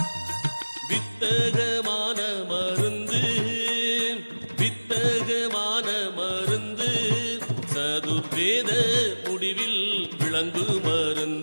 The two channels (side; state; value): both; inverted; correlation -1.00